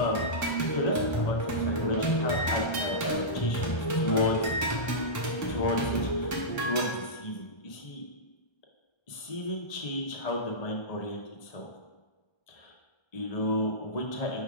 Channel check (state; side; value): late; right; 1.3 ms